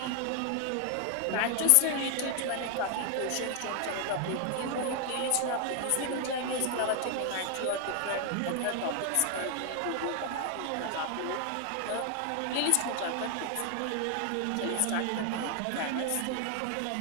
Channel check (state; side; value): different; both; correlation 0.00